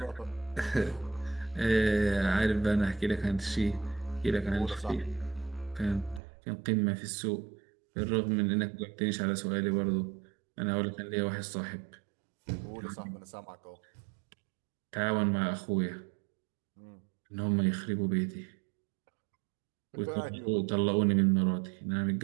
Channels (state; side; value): drops out; left; at 6.2 s